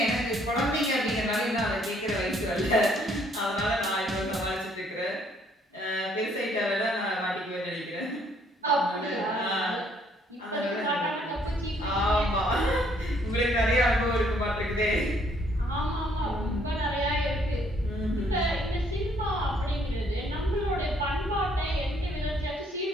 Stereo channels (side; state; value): both; normal; correlation 0.65